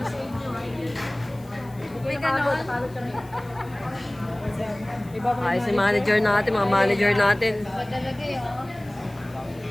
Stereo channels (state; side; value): noise; left; hiss, 26 dB below the sound